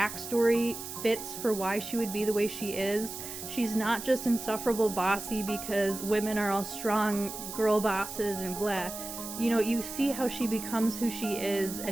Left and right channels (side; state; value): right; noise; hiss, 9 dB below the sound